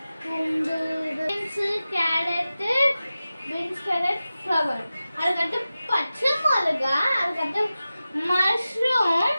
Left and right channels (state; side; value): inverted; both; correlation -0.95